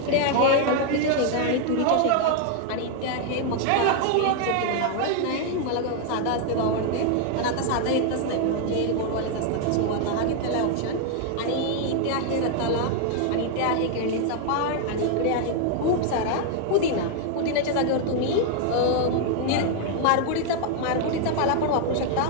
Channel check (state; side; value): different; both; correlation 0.00